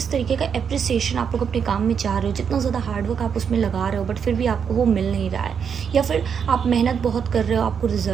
तरीके का एप्रिसिएशन आप लोग अपने काम में चाह रहे हो, जितना ज़्यादा हार्डवर्क आप उसमें लगा रहे हो, बट फिर भी आपको वो मिल नहीं रहा है। या फिर आप मेहनत बहुत कर रहे हो, आपको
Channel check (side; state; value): left; quieter; 7.1 dB